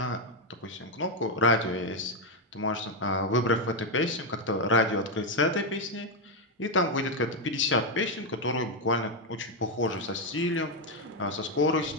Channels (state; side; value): normal; both; correlation 0.03